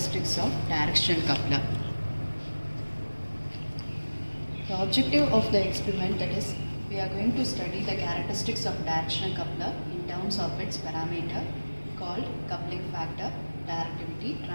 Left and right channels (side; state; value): both; inverted; correlation -1.00